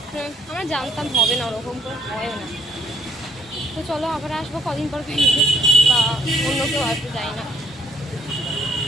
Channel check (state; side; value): normal; both; correlation 0.66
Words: আমরা জানতাম হবে না, ওরকম করে হয়ও না। তো চলো আবার আসবো কদিন পর ব্যাংকে, বা অন্য কেউ আসবে, যাই না।